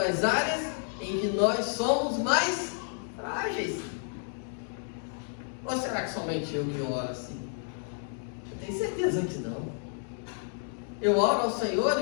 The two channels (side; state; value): right; silent; 57 dB below the other